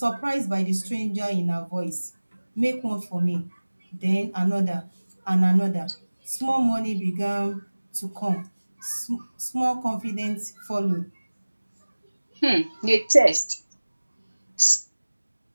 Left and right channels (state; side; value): inverted; both; correlation -1.00